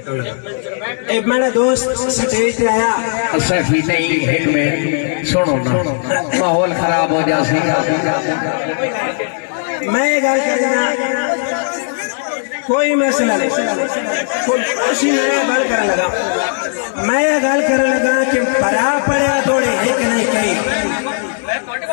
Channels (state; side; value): silent; right; digital silence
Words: एक मेरा दोस्त स्टेज पे आया सैफी नहीं एक मिनट सुनो ना माहौल खराब हो जाए मैं गल करना कोई मसला नहीं कोई गल कर लगा मैं गल कर लगा कि बरा पड़े थोड़े एक नहीं कही